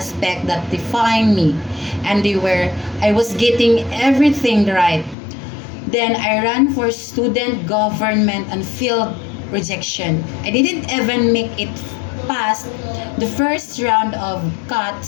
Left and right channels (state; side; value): drops out; right; at 5.2 s